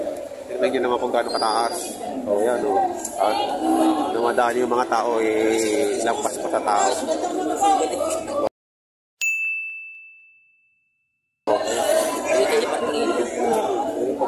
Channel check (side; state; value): both; identical; correlation 1.00